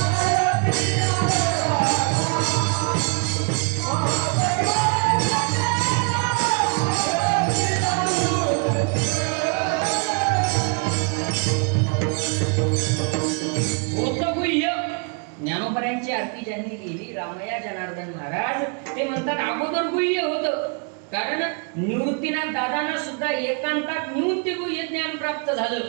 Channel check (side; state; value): left; quieter; 37.3 dB